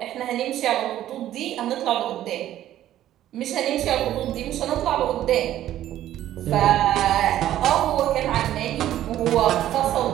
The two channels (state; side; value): quieter; left; 12.7 dB